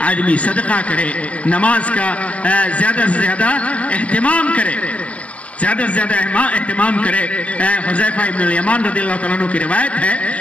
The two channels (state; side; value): late; right; 0.065 ms